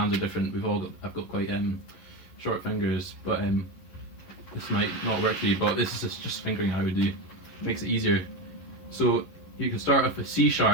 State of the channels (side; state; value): right; late; 11 ms